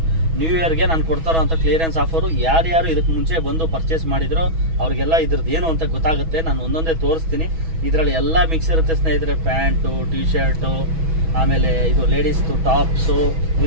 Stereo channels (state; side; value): late; left; 6.2 ms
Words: ನ್ಯೂ ಇಯರ್ಗೆ ನಾನು ಕೊಡ್ತಾರೋ ಅಂತ ಕ್ಲಿಯರೆನ್ಸ್ ಆಫರು. ಯಾರ್ಯಾರು ಇದಕ್ಕೆ ಮುಂಚೆ ಬಂದು ಪರ್ಚೇಸ್ ಮಾಡಿದ್ರೋ ಅವ್ರಿಗೆಲ್ಲ ಇದ್ರದ್ದು ಏನು ಅಂತ ಗೊತ್ತಾಗುತ್ತೆ. ನಾನು ಒಂದೊಂದೇ ತೋರಿಸ್ತೀನಿ. ಇದರಲ್ಲಿ ಎಲ್ಲ ಮಿಕ್ಸ್ ಇರುತ್ತೆ ಸ್ನೇಹಿತರೆ. ಪ್ಯಾಂಟು, ಟಿ ಶರ್ಟು, ಆಮೇಲೆ ಇದು ಲೇಡೀಸ್ದು ಟಾಪ್ಸು,